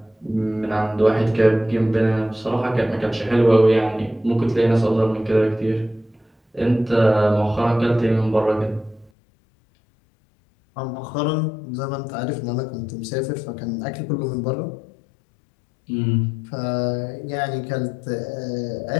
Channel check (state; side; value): drops out; right; at 9.1 s